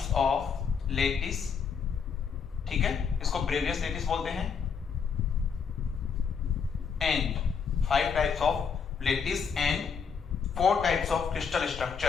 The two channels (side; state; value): right; quieter; 6.3 dB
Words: of lattice, ठीक है, इसको ब्रेवियस लेटिस बोलते हैं। And 5 types of lattice and 4 types of crystal